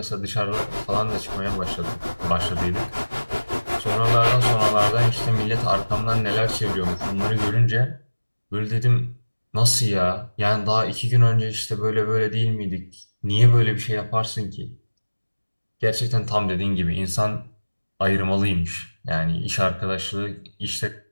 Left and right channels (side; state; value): both; inverted; correlation -1.00